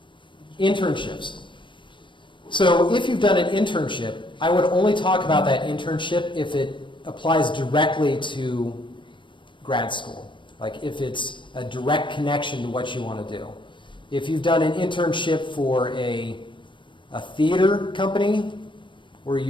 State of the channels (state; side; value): late; right; 0.24 ms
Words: Internships. So if you've done an internship, I would only talk about that internship if it applies directly to grad school, like if it's a direct connection to what you want to do. If you've done an internship for a theater company where